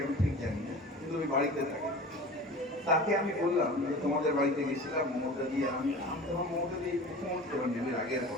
আমি ঠিক জানি না, কিন্তু ওই বাড়িতে থাকে। তাকে আমি বললাম যে তোমাদের বাড়িতে গেছিলাম মমতা দিয়ে, আমি তখন মমতা দিয়ে মুখ্যমন্ত্রী হন আগের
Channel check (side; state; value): both; normal; correlation 0.37